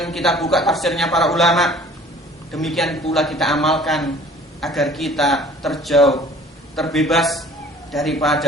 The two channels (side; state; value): both; normal; correlation 0.50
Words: kita buka tafsirnya para ulama. Demikian pula kita amalkan agar kita terjauh, terbebas